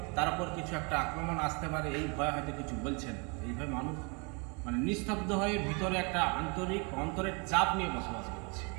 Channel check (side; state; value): left; quieter; 32.6 dB